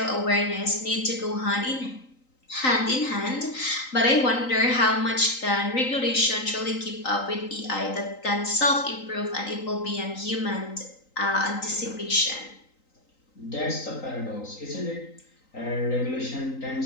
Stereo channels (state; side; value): late; right; 3.9 ms